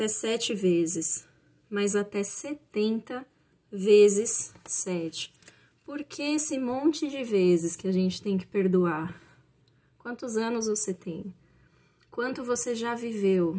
7 vezes, mas até 70 vezes 7. Por que esse monte de vezes que a gente tem que perdoar? Quantos anos você tem? Quanto você já viveu?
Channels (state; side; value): identical; both; correlation 1.00